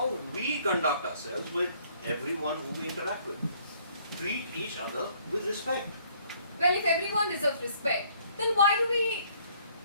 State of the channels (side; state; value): both; inverted; correlation -0.62